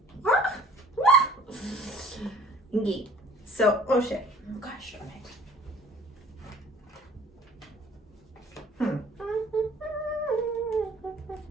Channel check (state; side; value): normal; both; correlation 0.51